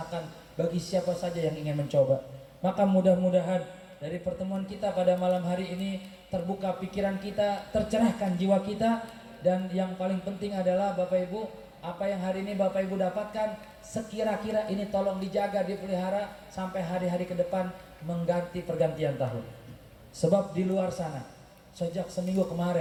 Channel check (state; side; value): identical; both; correlation 1.00